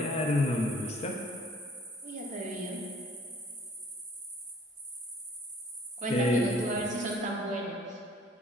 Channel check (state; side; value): normal; both; correlation 0.56